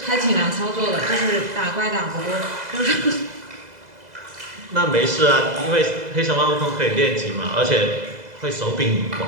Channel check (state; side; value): late; left; 2.0 ms